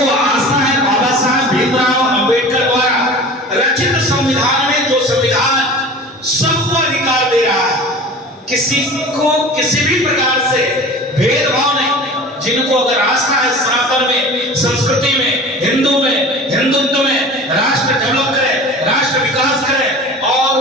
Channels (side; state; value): both; normal; correlation 0.38